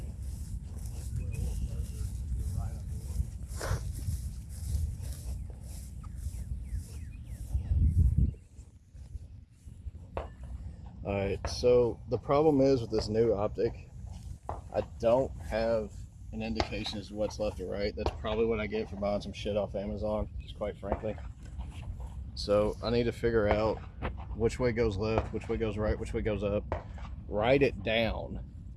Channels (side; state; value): both; identical; correlation 1.00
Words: Alright, so the problem is with this new optic, I don't have an indication as to what's left or right. That's probably what I get for buying some shit off Amazon, just quite frankly. So I need to figure out which way goes left, which way goes right, which way goes up, write it down,